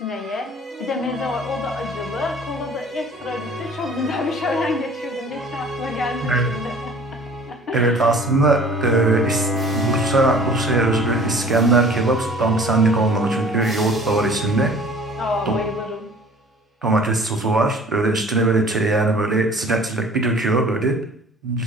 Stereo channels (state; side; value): normal; both; correlation 0.49